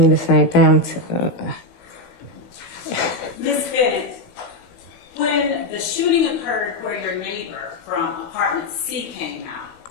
the same thing. Ms. Bennett, when the shooting occurred where your neighbor from apartment C came out,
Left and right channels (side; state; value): right; late; 18 ms